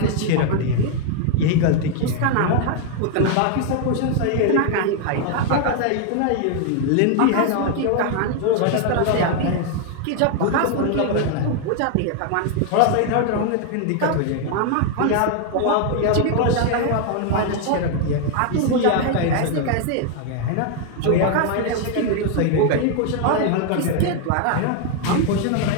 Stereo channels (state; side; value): different; both; correlation 0.00